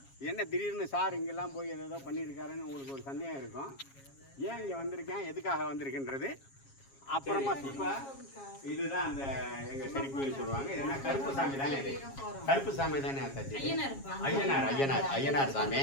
என்ன திடீர்னு சார் இங்கெல்லாம் போய் ஏதோ பண்ணியிருக்காருன்னு உங்களுக்கு ஒரு சந்தேகம் இருக்கும். ஏன் இங்கே வந்திருக்கேன், எதுக்காக வந்திருக்குன்றது அப்புறமா. இப்போ இதுதான் அந்த எங்கள் செடி கோயில் சொல்லுவாங்க. இது என்ன கருப்பு சாமி தானே? இது கருப்பு சாமி தானே அத்தாச்சி? ஐயனார் சாமி.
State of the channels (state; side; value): late; right; 7.3 ms